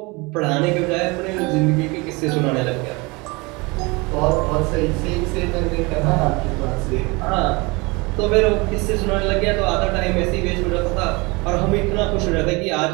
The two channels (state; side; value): quieter; left; 26.1 dB